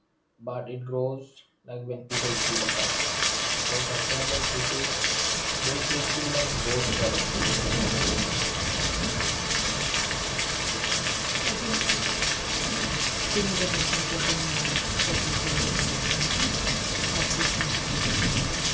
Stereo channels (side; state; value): both; identical; correlation 1.00